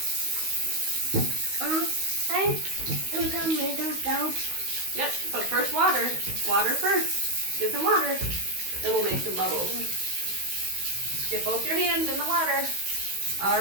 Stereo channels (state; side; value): late; left; 16 ms